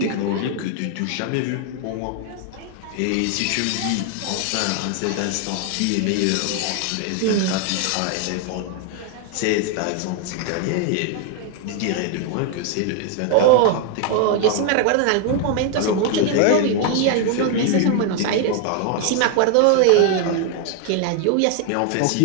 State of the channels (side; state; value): both; different; correlation 0.00